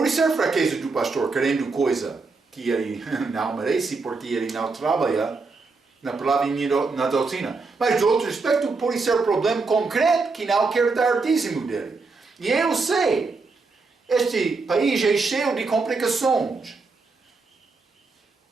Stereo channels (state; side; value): quieter; left; 4.1 dB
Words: ser fraqueza do pastor, querendo coisa que ele não merece, porque ele não trabalha na palavra e na doutrina. Mas, de outro aspecto, pode ser problema concreto que não quer dar dízimo dele. E eu sei, este país é cheio de complicações.